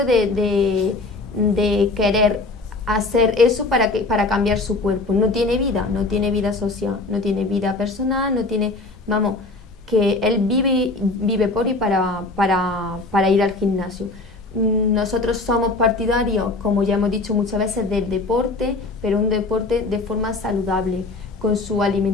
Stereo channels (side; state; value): right; quieter; 3.3 dB